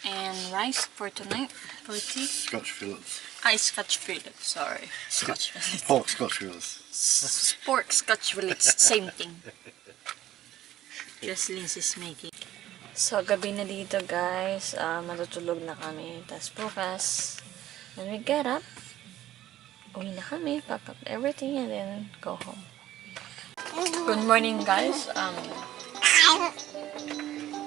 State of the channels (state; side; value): quieter; left; 13.6 dB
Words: and rice for tonight for tea. Scotch fillets. Scotch fillet, sorry. Scotch fillet. Pork Scotch fillets. Pork Scotch fillet, same thing. Just Lindsay's making. So, gabi na dito guys. Matutulog na kami. Tapos bukas, when we get up, uwi na kami, pack up everything, and then go home. Good morning guys.